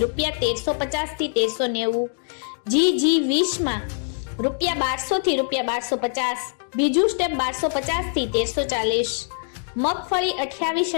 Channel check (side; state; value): right; silent; 63 dB below the other